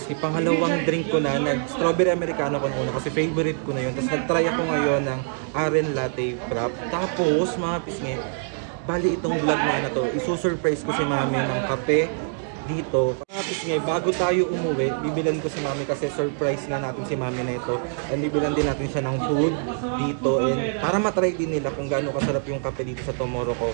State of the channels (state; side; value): silent; left; 62 dB below the other